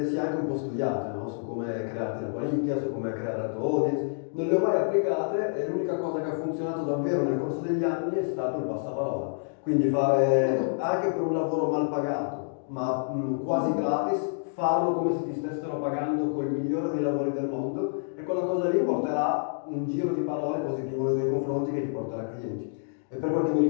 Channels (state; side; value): silent; right; digital silence